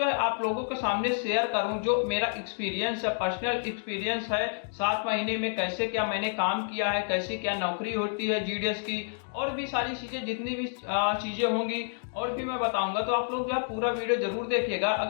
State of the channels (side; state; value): right; silent; digital silence